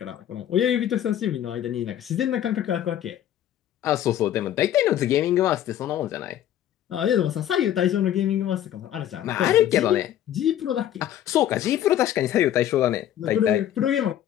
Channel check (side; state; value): right; quieter; 11.4 dB